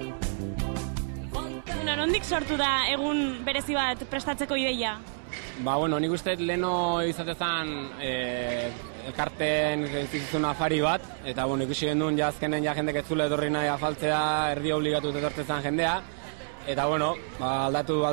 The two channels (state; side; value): silent; left; digital silence